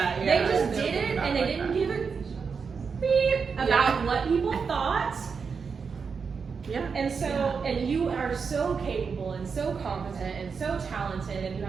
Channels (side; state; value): left; quieter; 5.6 dB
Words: They just did it, and they didn't give a beep about what people thought. And so, and you are so capable and so competent and so talented, and you